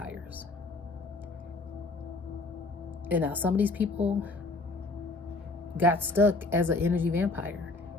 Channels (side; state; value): right; quieter; 3.3 dB